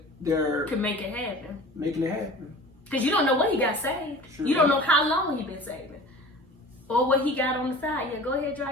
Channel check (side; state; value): both; normal; correlation 0.40